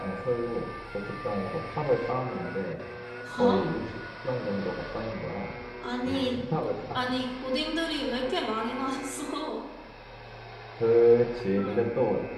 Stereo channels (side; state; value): both; identical; correlation 1.00